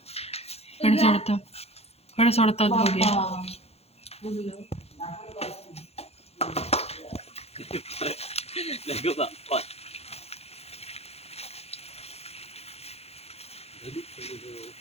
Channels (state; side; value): late; right; 0.30 ms